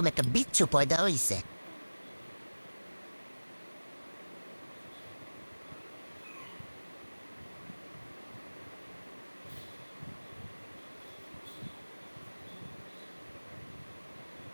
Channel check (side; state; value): both; inverted; correlation -1.00